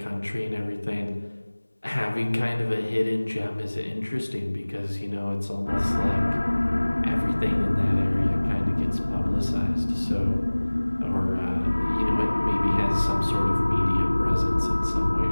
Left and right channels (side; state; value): both; inverted; correlation -1.00